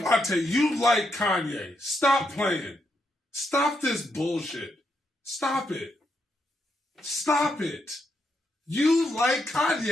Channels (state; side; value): normal; both; correlation 0.80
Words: Devontae, you like Kanye. Stop playing. Stop this bullshit. Stop it. Stop it. You like